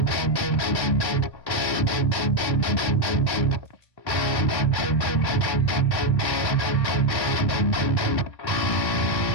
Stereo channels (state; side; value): late; right; 1.1 ms